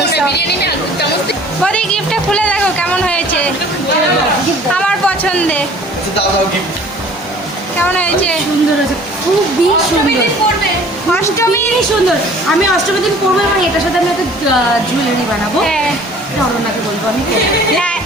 সব। বৌদি গিফটটা খুলে দেখো কেমন হয়েছে, আমার পছন্দের কেমন হয়েছে। সুন্দর আছে, খুবই সুন্দর। অষ্টমী সুন্দর। আমি অষ্টমীর দিন পরবো এবং এটার সাথে আমি একটা জুয়েলারি বানাবো। হ্যাঁ এটা অরণ্যাকে বলবো আমি করবো। হ্যাঁ,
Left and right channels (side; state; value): both; normal; correlation 0.50